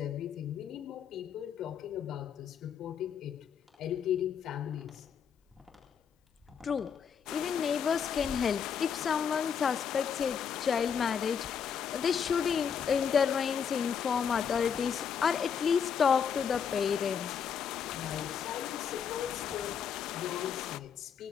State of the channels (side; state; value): right; quieter; 7.3 dB